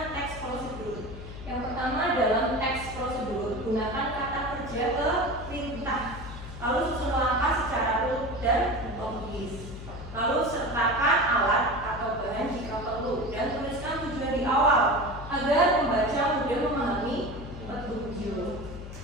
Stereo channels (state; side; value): noise; left; hum, 11 dB below the sound